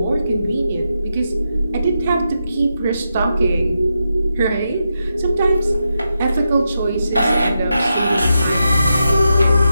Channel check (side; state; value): both; inverted; correlation -0.87